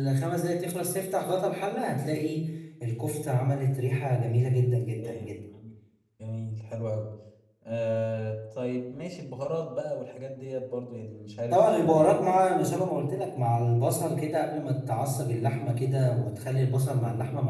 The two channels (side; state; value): both; identical; correlation 1.00